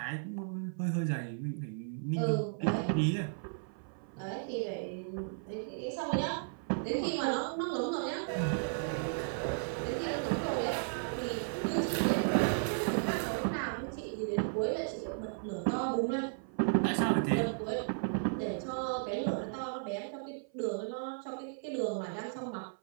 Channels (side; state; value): left; silent; 55 dB below the other